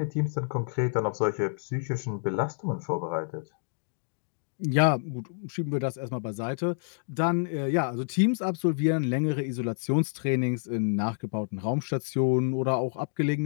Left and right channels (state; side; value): silent; right; digital silence